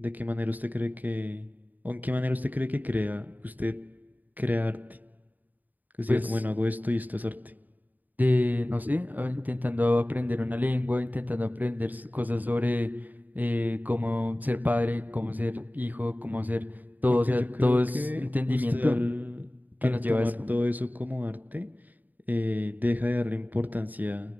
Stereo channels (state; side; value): late; left; 0.083 ms